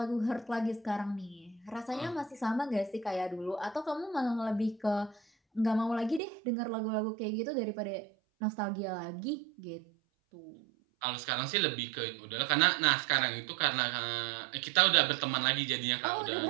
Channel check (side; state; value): left; drops out; at 6.2 s